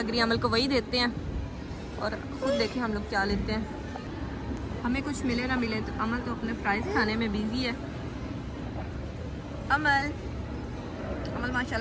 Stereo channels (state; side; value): identical; both; correlation 1.00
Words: रही है, अमल को वही देते हैं, और ख़ुद देखें हम लोग क्या लेते हैं। हमें कुछ मिले ना मिले, तो अमल तो अपने फ्राइज़ खाने में बिज़ी है। अमल